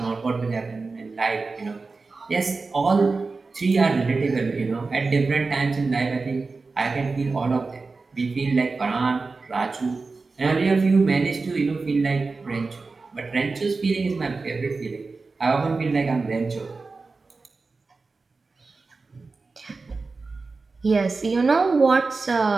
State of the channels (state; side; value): quieter; left; 4.0 dB